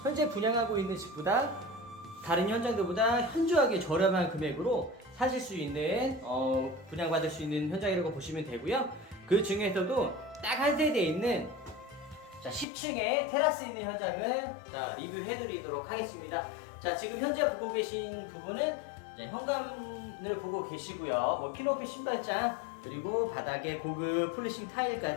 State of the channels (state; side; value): drops out; right; at 12.7 s